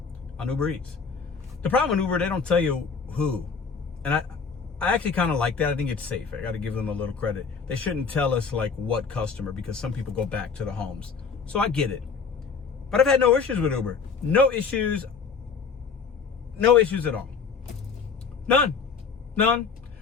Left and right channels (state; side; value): quieter; right; 5.5 dB